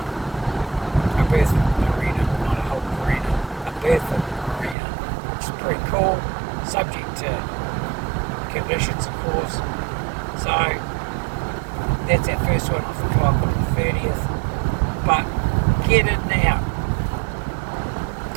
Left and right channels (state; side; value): drops out; left; at 4.8 s